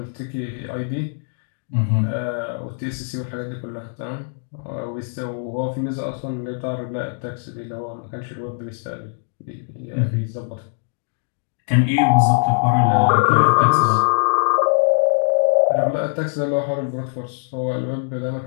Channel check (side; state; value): right; silent; digital silence